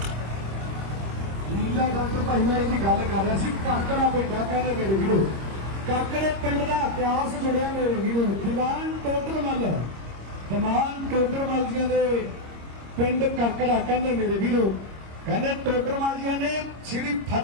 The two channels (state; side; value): late; left; 26 ms